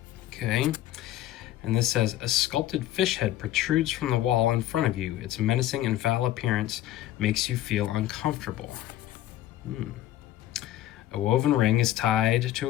Okay. And this says, a sculpted fish head protrudes from the wall in front of you. Its menacing and foul appearance makes you feel uncomfortable. A woven ring is tied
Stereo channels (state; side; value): quieter; right; 13.6 dB